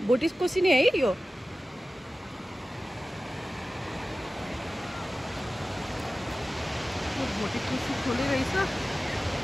भोटेकोसी नै है यो भोटेकोसी खोले रहेछ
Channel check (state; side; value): normal; both; correlation 0.95